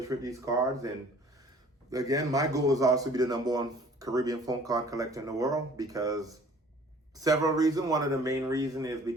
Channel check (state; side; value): normal; both; correlation 0.52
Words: with these cards. And again, my goal is also to be the #1 Caribbean phone card collector in the world because several reasons. One of the main reasons is